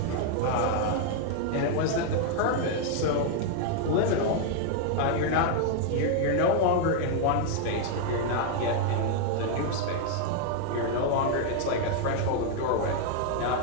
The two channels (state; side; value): different; both; correlation 0.00